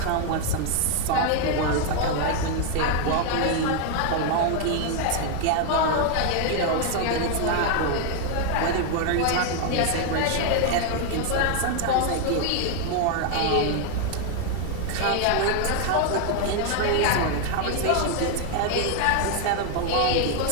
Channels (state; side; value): different; both; correlation 0.00